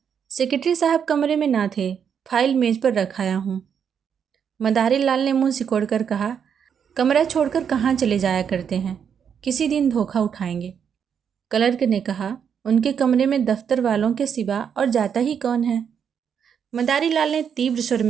सेक्रेटरी साहब कमरे में ना थे, फाइल मेज पर रखाया हूँ। मदारी लाल ने मुंह सिकोड़कर कहा, कमरा छोड़कर कहाँ चले जाया करते हैं, किसी दिन धोखा उठाएंगे। क्लर्क ने कहा, उनके कमरे में दफ्तर वालों के सिवा और जाता ही कौन है। मदारी लाल ने तीव्र स्वर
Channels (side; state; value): left; quieter; 7.6 dB